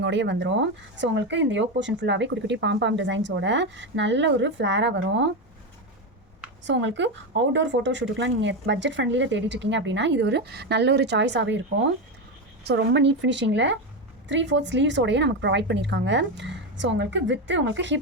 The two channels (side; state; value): both; normal; correlation 0.13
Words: வந்துடும். ஸோ உங்களுக்கு இந்த யோக் போர்ஷன் ஃபுல்லாகவே குட்டி குட்டி பாம் டிசைன்ஸோட நல்ல ஒரு ஃப்ளாராக வரும். ஸோ உங்களுக்கு அவுட்டோர் ஃபோட்டோ ஷூட்டுக்குலாம் நீங்கள் பட்ஜெட் ஃப்ரெண்ட்லியில் தேடிட்டுருக்கீங்க அப்படின்னா இது ஒரு நல்ல ஒரு சாய்ஸாகவே இருக்கும். ஸோ ரொம்ப நீட் ஃபினிஷிங்கில் 3/4 ஸ்லீவ்ஸோடையே நமக்கு ப்ரொவைட் பண்ணியிருக்காங்க. ஸோ உங்களுக்கு